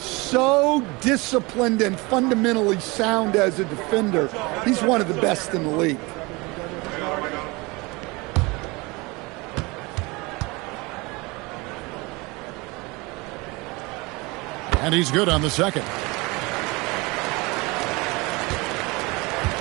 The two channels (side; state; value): left; quieter; 25.0 dB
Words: so disciplined and fundamentally sound as a defender. He's one of the best in the league. And he's good on the second.